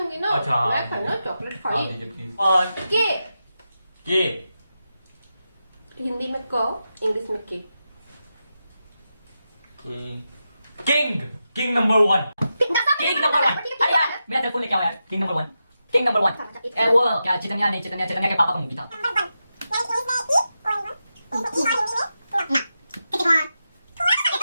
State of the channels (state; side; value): inverted; both; correlation -0.89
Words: ना। अच्छा, हाँ। मैं खाना चॉकलेट हाँ, खाई। दीजिए प्लीज। के के हिंदी में क, इंग्लिश में के। King king number 1 king number 1 अरे यार मेरा सेल फोन लेके आओ यार किंग नंबर 1 किंग नंबर 1 वो क्या चिकनिया नहीं चिकनिया के पापा का मूवी था